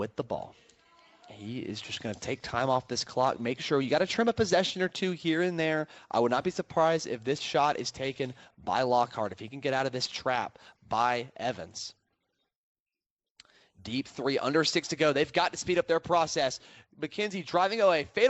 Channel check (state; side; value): identical; both; correlation 1.00